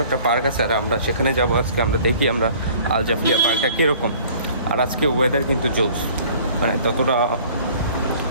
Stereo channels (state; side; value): inverted; both; correlation -0.51